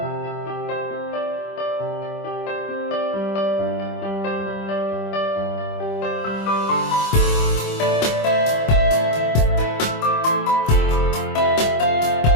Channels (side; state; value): right; late; 25 ms